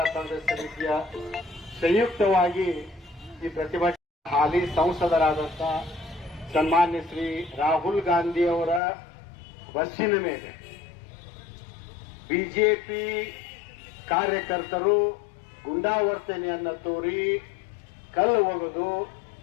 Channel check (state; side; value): drops out; right; at 8.8 s